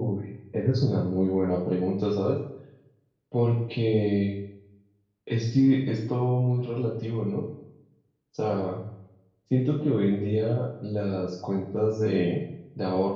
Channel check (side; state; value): both; identical; correlation 1.00